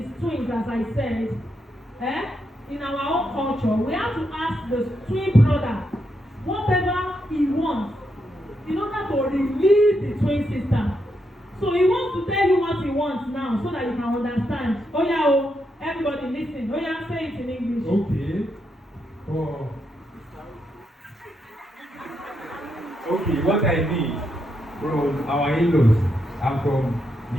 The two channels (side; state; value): both; normal; correlation 0.81